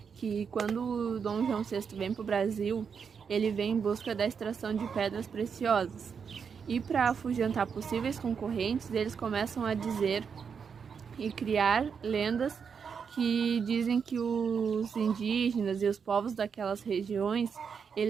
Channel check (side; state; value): left; quieter; 6.4 dB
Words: que quando o Dom João VI vem para o Brasil, ele vem em busca da extração de pedras preciosas. E para afugentar possíveis concorrentes, eles começam a dizer e criar lendas que dizem que os indígenas e os povos daquelas regiões,